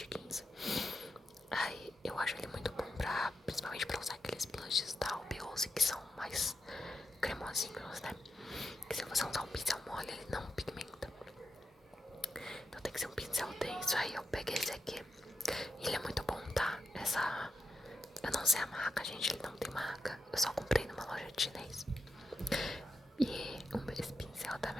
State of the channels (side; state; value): both; normal; correlation 0.87